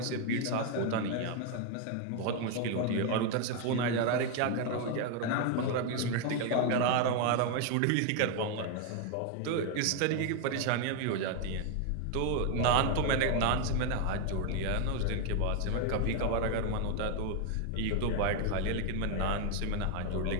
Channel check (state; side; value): different; both; correlation 0.01